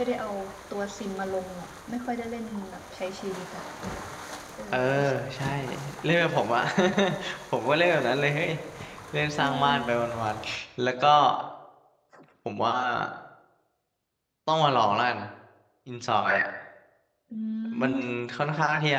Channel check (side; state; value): both; identical; correlation 1.00